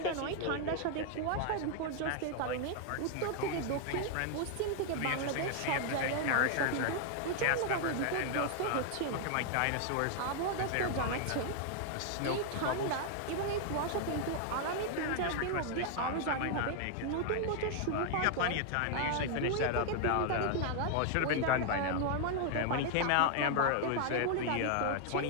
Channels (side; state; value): both; different; correlation 0.00